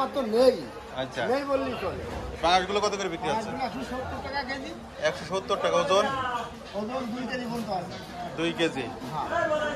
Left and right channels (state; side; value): identical; both; correlation 1.00